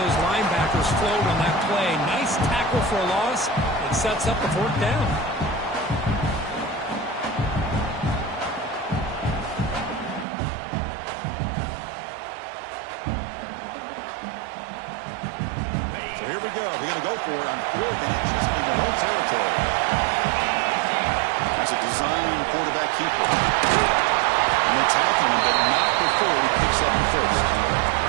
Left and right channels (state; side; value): drops out; left; at 10.2 s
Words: those linebackers flowed on that play. Nice tackle for a loss. It sets up the 4th down. So here we go. They're going to go for it on 4th and inches in their own territory. That's a design quarterback keeper. And they tackle him, but not before he picks up the 1st.